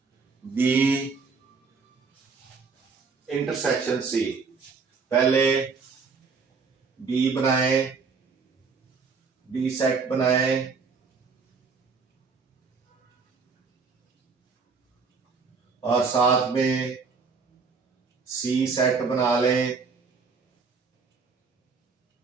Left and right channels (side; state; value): left; quieter; 5.0 dB